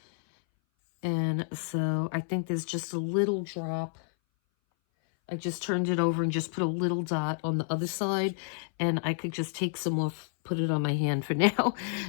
And so I think there's just a little drop. I just turned it over and just put a little dot on the other side, and I could just take some off, put it on my hand for now.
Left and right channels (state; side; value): silent; right; 58 dB below the other